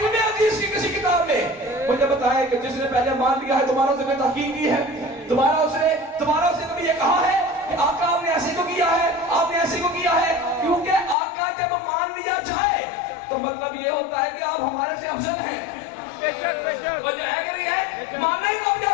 حدیث کی کسی کتاب میں مجھے بتائیں کہ جس نے پہلے مان لیا ہے تمہارا اسے کوئی تحقیق کی ہے؟ تمہارا اسے کبھی یہ کہا ہے کہ آقا آپ نے ایسے کو کیا ہے، آپ نے ایسے کو کیا ہے؟ کیونکہ آقا جب مان لیا جائے تو مطلب یہ ہوتا ہے کہ آپ ہمارے سے افضل ہیں۔ وجہ ہے کہ نہیں ہے؟ ماننا ہی کب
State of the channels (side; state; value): right; drops out; at 11.2 s